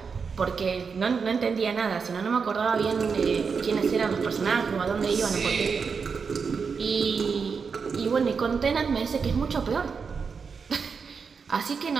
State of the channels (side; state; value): left; quieter; 5.6 dB